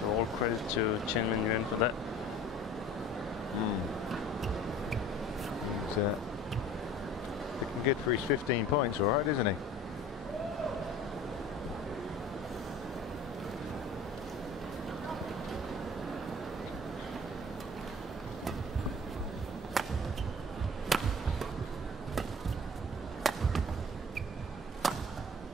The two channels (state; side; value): normal; both; correlation 0.45